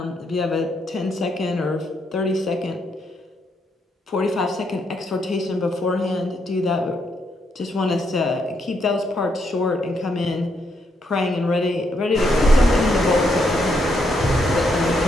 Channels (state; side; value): normal; both; correlation 0.77